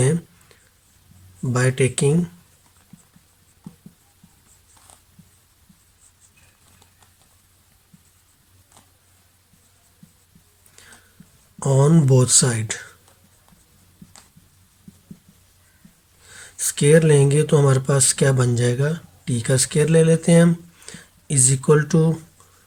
by taking on both side. Square लेंगे तो हमारे पास क्या बन जाएगा, टी का स्क्वायर ले लेते हैं हम, इज इक्वल टू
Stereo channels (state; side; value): identical; both; correlation 1.00